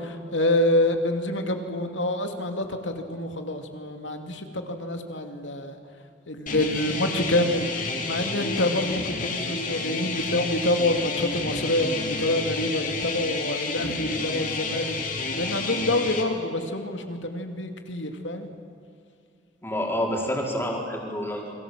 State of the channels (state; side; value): normal; both; correlation 0.09